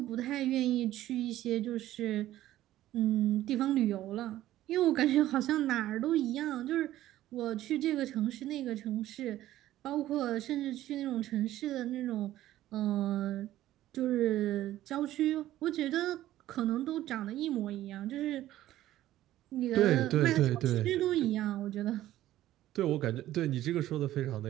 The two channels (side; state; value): left; quieter; 14.1 dB